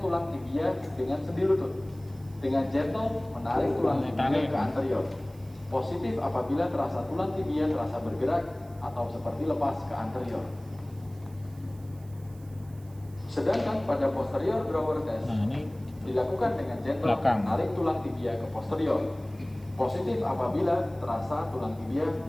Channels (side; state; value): right; noise; hiss, 27 dB below the sound